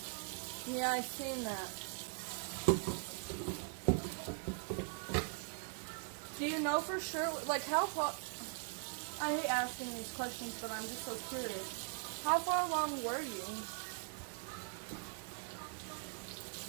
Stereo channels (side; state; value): left; silent; 51 dB below the other